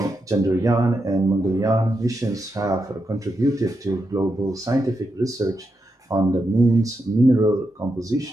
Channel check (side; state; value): both; normal; correlation 0.85